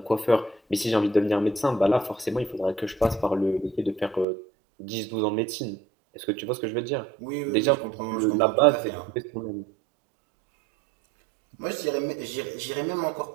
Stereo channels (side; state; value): left; drops out; at 4.2 s